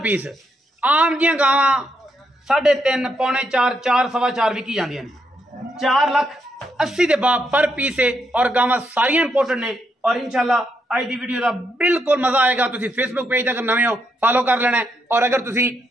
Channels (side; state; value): both; normal; correlation 0.78